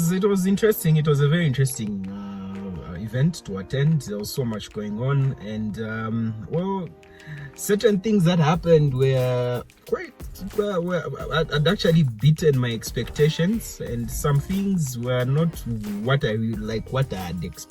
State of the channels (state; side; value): identical; both; correlation 1.00